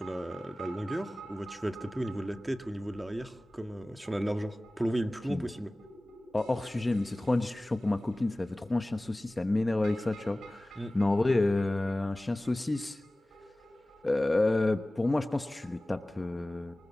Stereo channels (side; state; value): both; normal; correlation 0.98